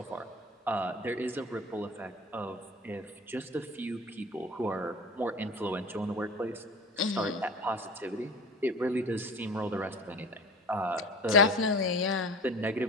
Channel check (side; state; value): both; normal; correlation 0.36